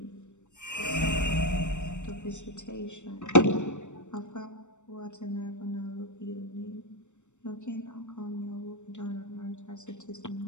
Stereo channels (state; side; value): late; right; 0.84 ms